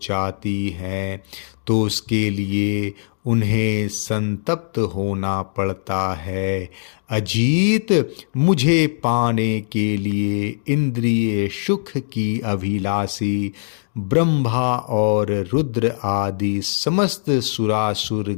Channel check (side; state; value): right; silent; digital silence